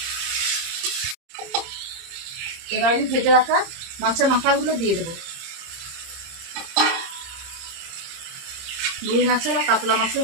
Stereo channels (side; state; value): left; late; 30 ms